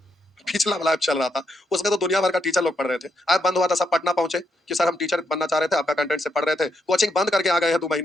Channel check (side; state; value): both; normal; correlation 0.79